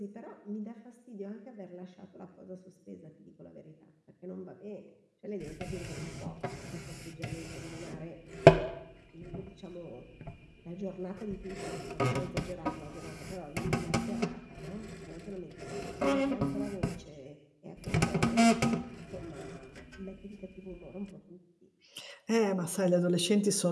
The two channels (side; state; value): both; identical; correlation 1.00